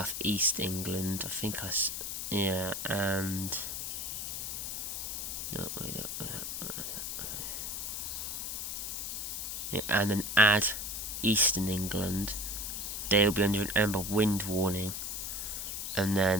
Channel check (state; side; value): noise; left; hiss, 4 dB below the sound